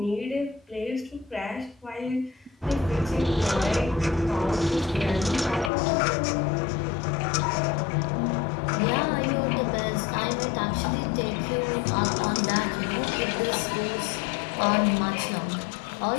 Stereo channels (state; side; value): drops out; right; at 5.7 s